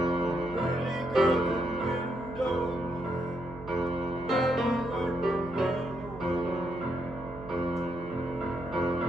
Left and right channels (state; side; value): noise; right; hum, 15 dB below the sound